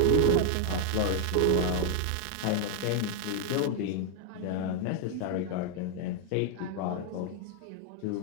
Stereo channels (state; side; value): different; both; correlation 0.00